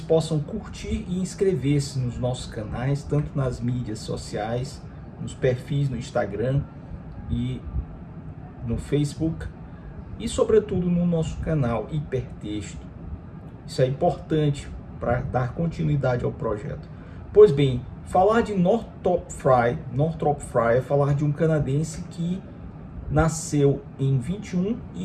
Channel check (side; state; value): both; identical; correlation 1.00